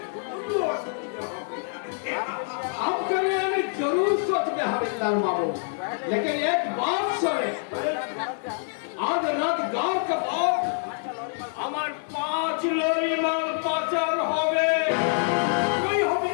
কোনো অসুবিধা হবে না। आपके लिए हमें जरूर सोच में हवलदार बाबू लेकिन एक बात सुने आज रात गांव का भाव हमार 5 लॉरी माल पाचार होवे কই হবে?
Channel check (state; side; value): silent; right; 61 dB below the other